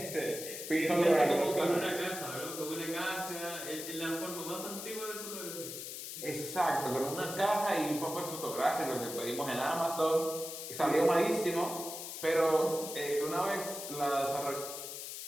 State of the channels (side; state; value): left; noise; hiss, 8 dB below the sound